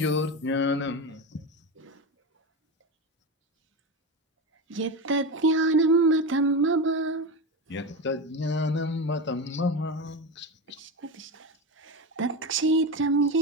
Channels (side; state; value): both; normal; correlation 0.19